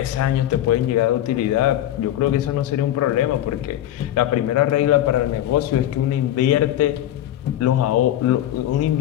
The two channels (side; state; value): right; quieter; 12.6 dB